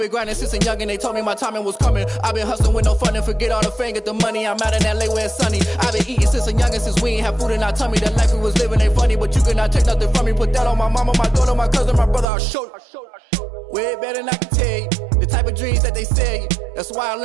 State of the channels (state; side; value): drops out; left; at 12.2 s